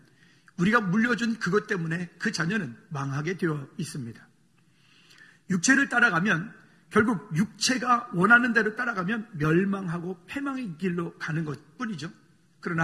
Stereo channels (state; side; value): identical; both; correlation 1.00